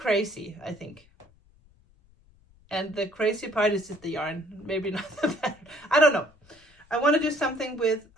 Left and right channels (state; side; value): noise; left; rumble, 30 dB below the sound